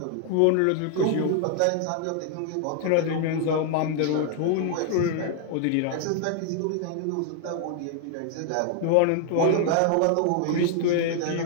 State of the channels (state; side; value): different; both; correlation 0.00